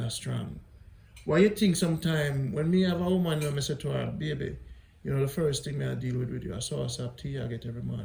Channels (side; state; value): both; identical; correlation 1.00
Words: strong? Why you think sometime when me have a woman when I say to her, baby, you know, the first thing I deal with you, I sauce up tea I get every